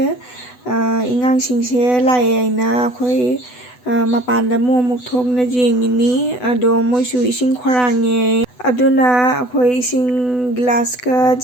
ingangsingse lae aina akhoi mapanda amuk thokna jengini. Ado moisu ising khorange aduna akhoi ising glass ka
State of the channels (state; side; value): late; right; 8.0 ms